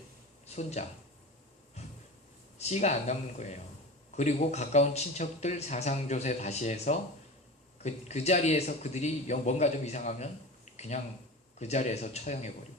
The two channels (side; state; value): both; normal; correlation 0.31